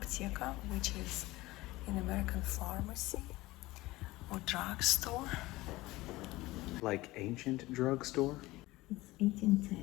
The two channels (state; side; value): quieter; right; 19.3 dB